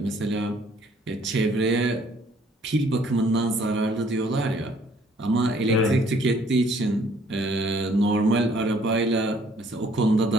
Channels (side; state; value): both; normal; correlation 0.61